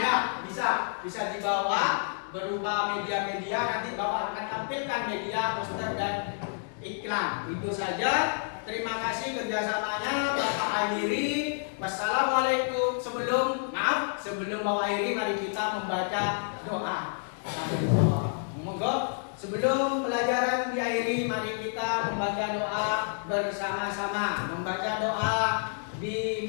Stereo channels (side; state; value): right; silent; digital silence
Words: bisa dibawa berupa media-media. Nanti Bapak akan tampilkan media poster dan iklan. Itu saja. Terima kasih kerjasamanya Bapak Akhiri. Wassalamualaikum. Sebelum Bapak Akhiri, mari kita membaca doa. Monggo. Sebelum pelajaran diakhiri, mari kita membaca doa bersama-sama. Membaca doa